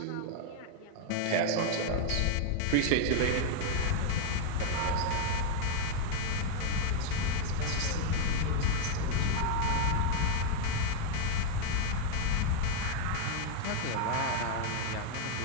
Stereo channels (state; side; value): different; both; correlation 0.00